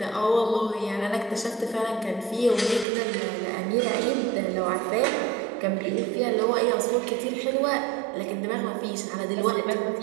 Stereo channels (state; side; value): drops out; left; at 2.9 s